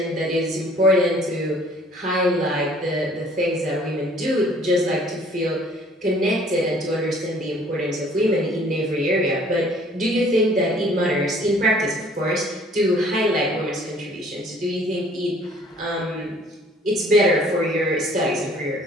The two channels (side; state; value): both; normal; correlation 0.56